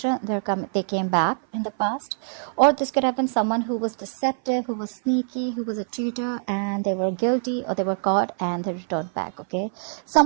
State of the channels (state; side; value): silent; left; 59 dB below the other